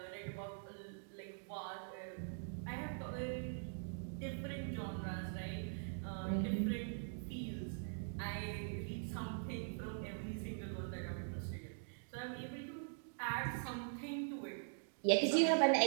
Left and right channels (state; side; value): silent; left; digital silence